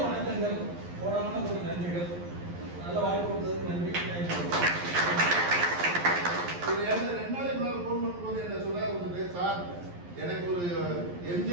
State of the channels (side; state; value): left; late; 11 ms